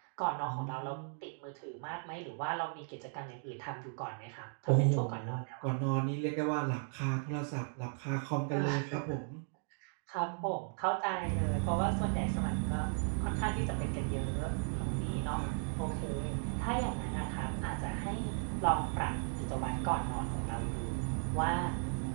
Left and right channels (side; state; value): left; silent; 54 dB below the other